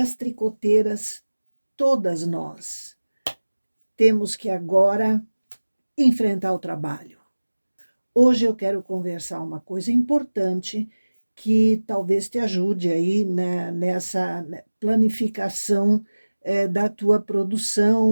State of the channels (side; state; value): both; inverted; correlation -1.00